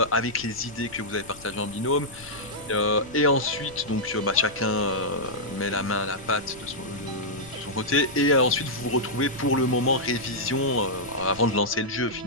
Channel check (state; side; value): noise; left; rumble, 21 dB below the sound